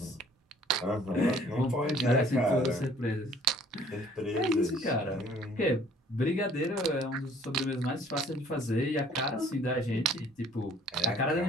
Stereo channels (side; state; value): both; normal; correlation 0.57